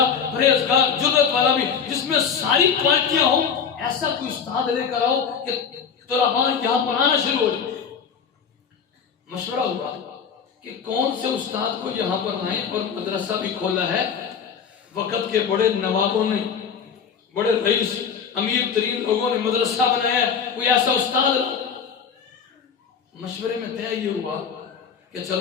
پرہیزگار، جرأت والا بھی، جس میں ساری کوالٹیاں ہوں، ایسا کوئی استاد لے کر آؤ کہ طلباء یہاں پر آنا شروع ہو جائے۔ مشورہ ہوا کہ کون سے استاد کو یہاں پر لائیں، اور مدرسہ بھی کھولا ہے، وقت کے بڑے نوابوں نے، بڑے رئیس، امیر ترین لوگوں نے مدرسہ بنایا ہے، کوئی ایسا استاد لاؤ۔ مشورے میں طے یہ ہوا کہ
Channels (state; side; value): quieter; right; 6.8 dB